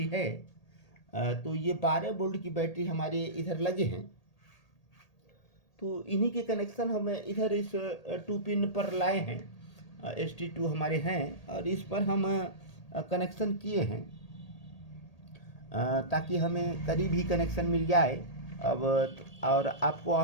है। तो ये 12 वोल्ट की बैटरी हमारे इधर लगे हैं। तो इन्हीं के कनेक्शन हम इधर इस 2 पिन पर लाए हैं। ST2 हमारे हैं और इस पर हम कनेक्शन किए हैं ताकि हमें करीब ही कनेक्शन मिल जाए। अब और आपको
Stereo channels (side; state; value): right; late; 1.8 ms